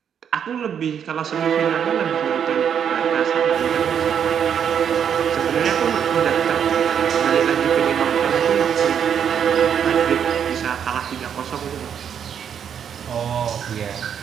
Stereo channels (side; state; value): left; quieter; 8.2 dB